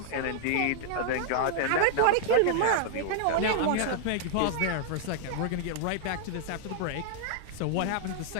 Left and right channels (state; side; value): different; both; correlation 0.00